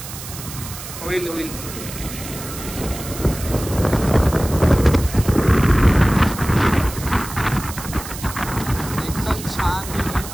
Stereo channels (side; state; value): right; noise; hiss, 11 dB below the sound